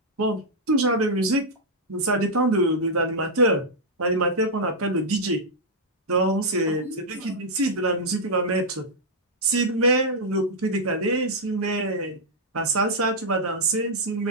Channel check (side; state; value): both; normal; correlation -0.06